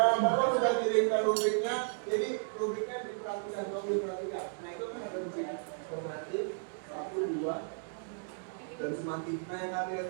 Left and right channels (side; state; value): left; silent; digital silence